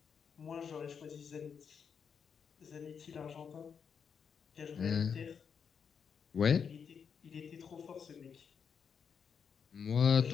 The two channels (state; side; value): quieter; right; 6.7 dB